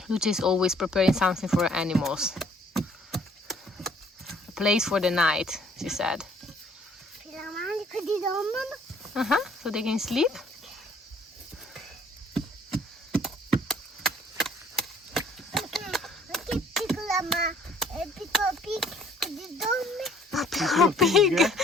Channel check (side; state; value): both; normal; correlation 0.60